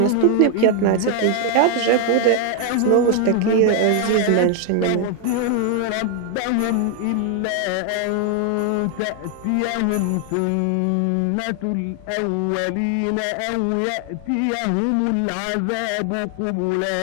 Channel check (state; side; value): different; both; correlation 0.00